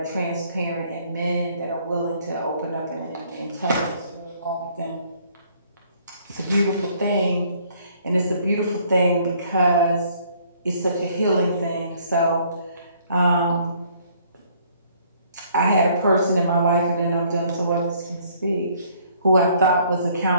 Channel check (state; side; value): inverted; both; correlation -0.62